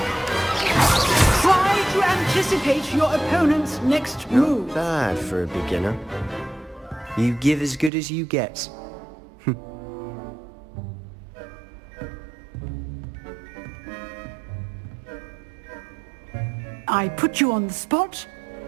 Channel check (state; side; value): drops out; left; at 7.9 s